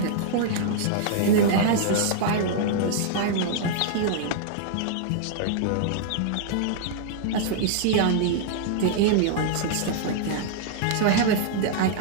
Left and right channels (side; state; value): both; different; correlation -0.01